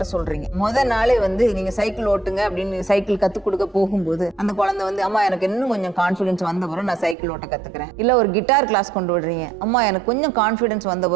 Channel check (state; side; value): drops out; left; at 7.2 s